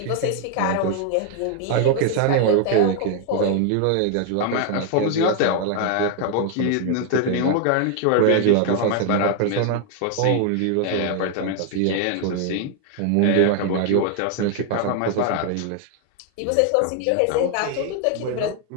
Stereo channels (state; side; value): different; both; correlation 0.00